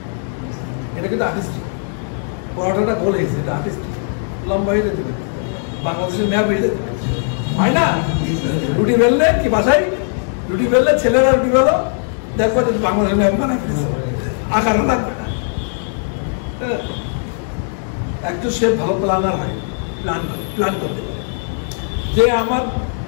এটা কিন্তু আর্টিস্টিক। পরোটাটা গোল হয়েছে, এটা আর্টিস্টিক। লম্বা হয়ে যেতে পারে, বাংলাদেশের ম্যাপ হয়ে যেতে পারে, হয় না? রুটি বেললে কি বাসায় রুটি বেললে ছেলেরা রুটি বেলো, দেখবো যে বাংলাদেশের ম্যাপ বানাই ফেলেছে, আকারও লাগবে না। একজন শেফ ভালো প্ল্যানার হয়, প্ল্যান করতে পারে। যে আমার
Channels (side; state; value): right; silent; digital silence